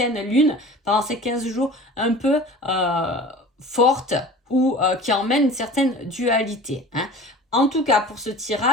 lune pendant ces 15 jours un peu forte ou qui emmène une certaine dualité. Hein. En tout cas, pour ce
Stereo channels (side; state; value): both; normal; correlation 0.40